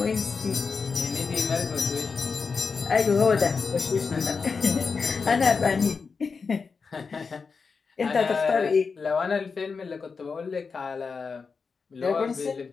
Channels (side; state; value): right; quieter; 5.1 dB